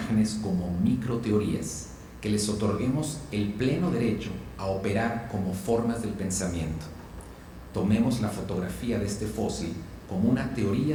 como microteorías, que les otorguemos el pleno derecho a operar como formas del pensamiento. Tomemos la fotografía de este fósil como una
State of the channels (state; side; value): identical; both; correlation 1.00